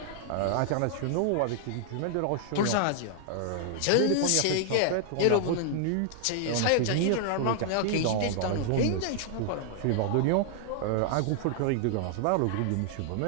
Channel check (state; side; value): different; both; correlation -0.01